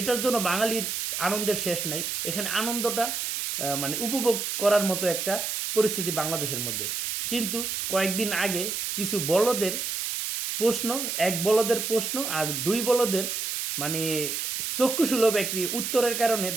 জন্য বাঙালির আনন্দের শেষ নাই। এখানে আনন্দটা উপভোগ করার মতো একটা পরিস্থিতি বাংলাদেশের মধ্যে। কিন্তু কয়েকদিন আগে কিছু বলদের প্রশ্ন, এক বলদের প্রশ্ন আর দুই বলদের মানে চক্ষুসুলভ একটি উত্তরের কারণে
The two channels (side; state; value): right; noise; hiss, 2 dB below the sound